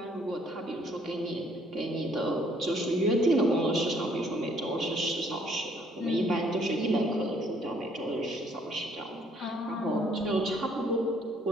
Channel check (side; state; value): both; normal; correlation 0.64